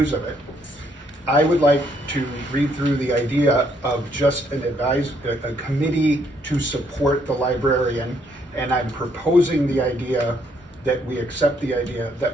of it. I would like to read through the idea of just a committee to support the librarian, and I'm proposing the idea that we accept the idea that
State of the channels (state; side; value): normal; both; correlation 0.70